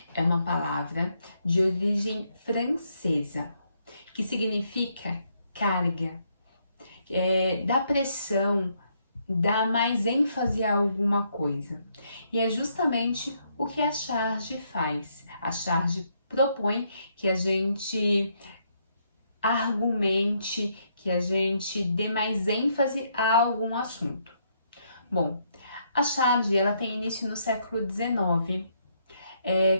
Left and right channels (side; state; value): both; inverted; correlation -0.74